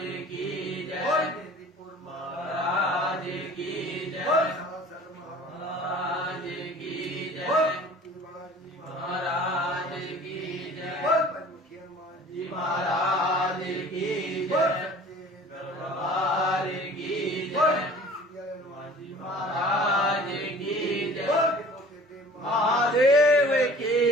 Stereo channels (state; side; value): normal; both; correlation 0.46